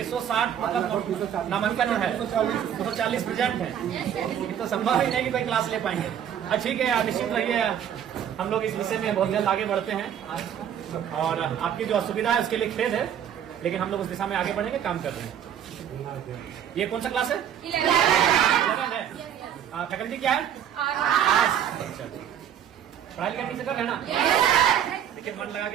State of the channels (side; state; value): left; quieter; 9.5 dB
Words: मतलब नामांकन है, 240 प्रेजेंट है। ये तो संभव ही नहीं कि कोई क्लास ले पाएंगे। ठीक है, आप निश्चित रहिए, हम लोग इस विषय में बहुत जल्द आगे बढ़ते हैं और आपकी जो असुविधा है उसके लिए खेद है, लेकिन हम लोग उस दिशा में आगे बढ़ेंगे, काम कर रहे हैं। ये कौन सा क्लास है? 11 है। फैकल्टी क्या है? अच्छा, पढ़ाई लिखाई ठीक से कर रहे हैं ना? देखिए, मन लगा